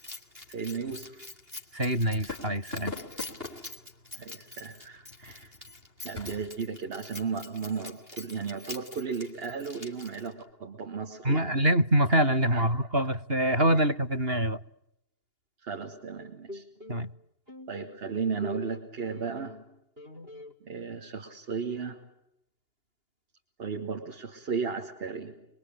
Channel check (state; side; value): late; left; 2.8 ms